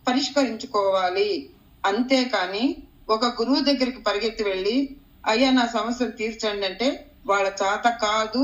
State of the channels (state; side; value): identical; both; correlation 1.00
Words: పరిష్కరించుకోవాలి. అంతేకాని ఒక గురువు దగ్గరికి పరిగెత్తి వెళ్ళి అయ్యా నా సమస్యను తీర్చండి అంటే వాళ్ళ చేత కాదు.